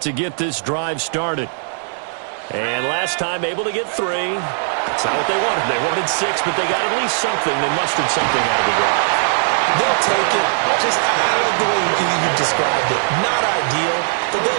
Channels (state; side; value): silent; left; digital silence